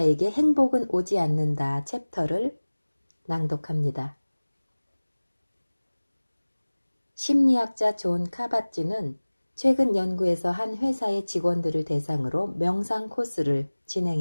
행복은 오지 않는다 챕터를 낭독합니다. 심리학자 존 카바찌는 최근 연구에서 한 회사의 직원들을 대상으로 명상 코스를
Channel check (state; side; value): inverted; both; correlation -1.00